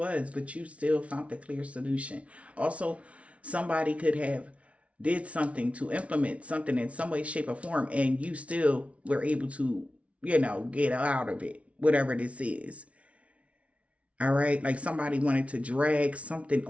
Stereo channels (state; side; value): late; left; 0.063 ms